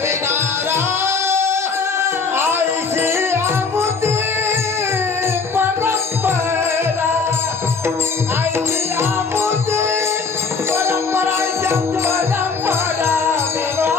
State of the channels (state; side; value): quieter; right; 4.8 dB